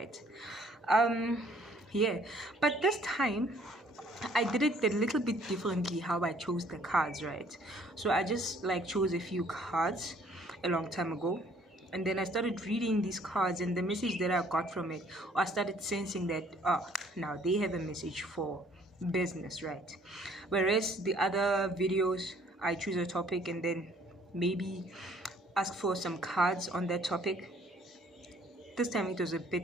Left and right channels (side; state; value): both; normal; correlation 0.60